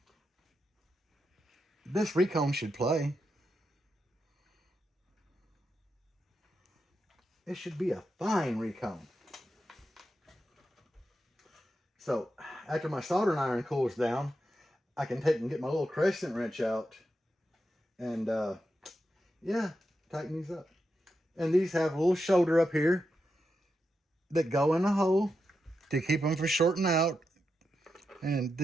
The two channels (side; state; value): both; normal; correlation 0.87